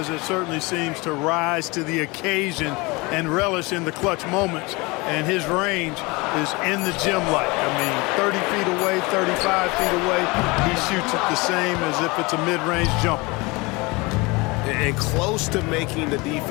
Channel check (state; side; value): quieter; right; 25.1 dB